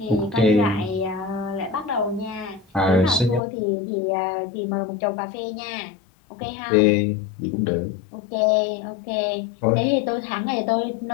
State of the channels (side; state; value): right; drops out; at 3.4 s